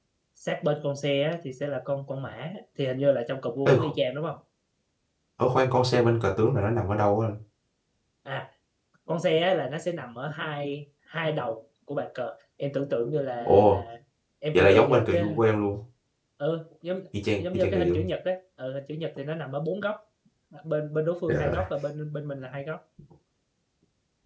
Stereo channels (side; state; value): both; identical; correlation 1.00